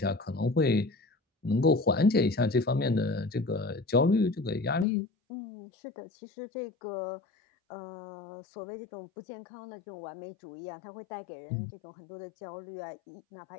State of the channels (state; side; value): drops out; right; at 4.9 s